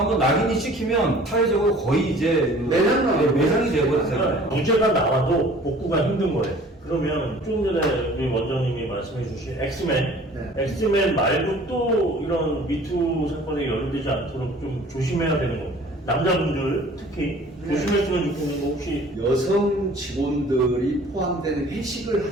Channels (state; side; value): normal; both; correlation 0.50